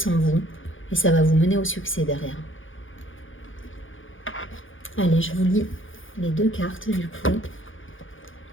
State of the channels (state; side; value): late; right; 0.58 ms